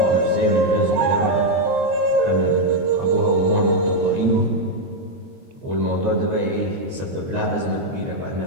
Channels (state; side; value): late; left; 22 ms